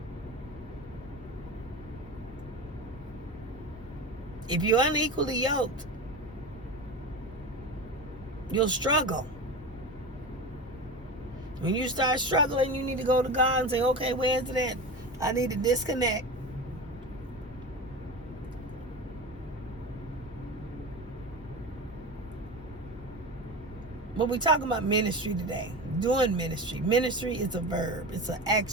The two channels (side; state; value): both; normal; correlation 0.27